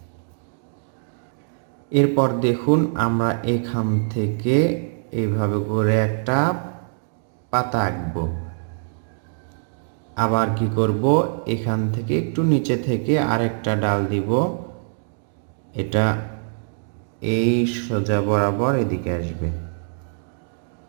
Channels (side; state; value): left; silent; digital silence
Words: এরপর দেখুন আমরা এখান থেকে এইভাবে করে একটা পাতা আঁকবো। আবার কি করব, এখান থেকে একটু নিচে থেকে আরেকটা ডাল দিব। এটা এই সোজা বরাবর এদিকে আসবে।